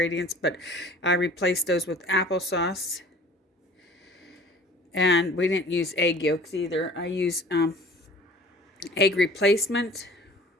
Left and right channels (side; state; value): both; normal; correlation 0.47